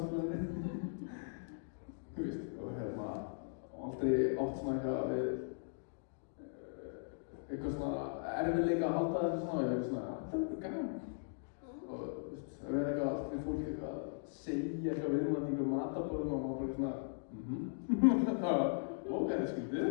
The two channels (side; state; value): right; silent; digital silence